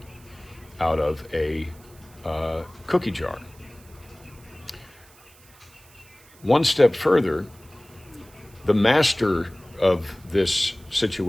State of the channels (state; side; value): noise; right; hiss, 26 dB below the sound